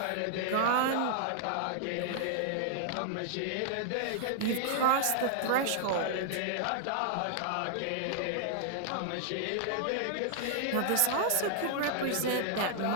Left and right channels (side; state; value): both; different; correlation -0.01